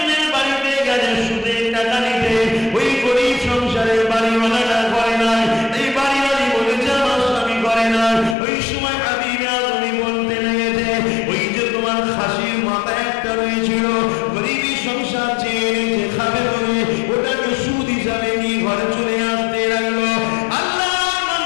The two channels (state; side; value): drops out; right; at 8.3 s